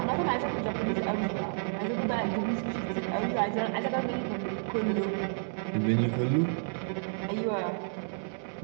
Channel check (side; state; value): left; silent; digital silence